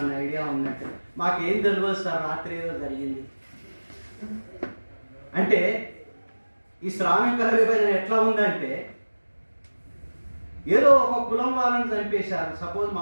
ఐడియా ఉన్నట్టు. మాకేం తెలియదు సార్, రాత్రి ఏదో జరిగింది అంటే. ఈ శ్రామికుల విభజన ఎట్లా ఉందంటే, ఏదో ఒక కులం వాళ్ళని చంపేశారు, సపోజ్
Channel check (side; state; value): both; inverted; correlation -1.00